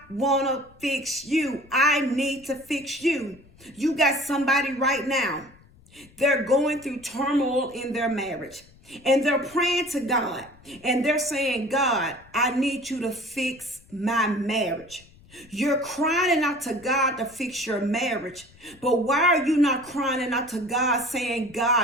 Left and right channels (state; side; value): noise; left; rumble, 26 dB below the sound